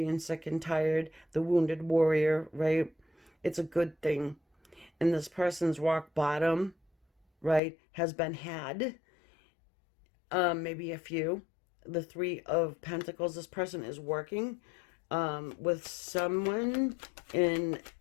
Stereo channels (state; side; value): drops out; right; at 7.6 s